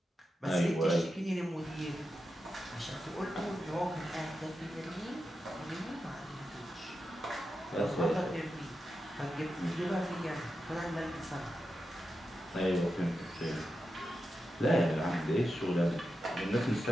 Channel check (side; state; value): both; normal; correlation 0.89